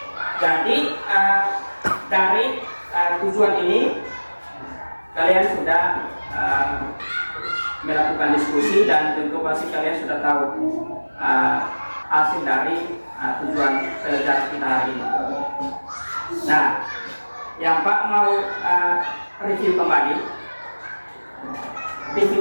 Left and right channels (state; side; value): inverted; both; correlation -1.00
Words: Jadi dari tujuan ini kalian sudah melakukan diskusi dan tentu pasti kalian sudah tahu hasil dari tujuan pelajaran kita hari ini. Nah, yang Pak mau review kembali